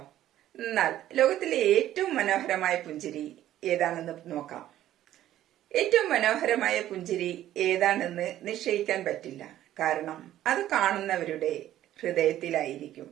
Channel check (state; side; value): quieter; left; 12.9 dB